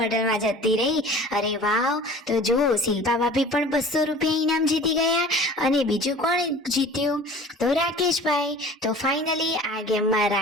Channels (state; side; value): normal; both; correlation 0.43